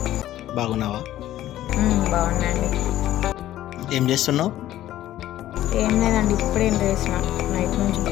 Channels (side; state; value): right; quieter; 13.6 dB